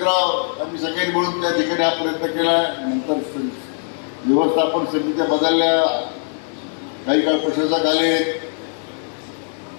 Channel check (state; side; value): silent; right; digital silence